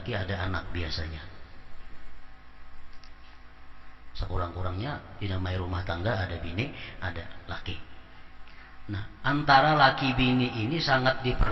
ada anak biasanya. Sekurang-kurangnya dinamai rumah tangga ada bini, ada laki. Nah, antara laki bini ini sangat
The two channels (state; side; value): identical; both; correlation 1.00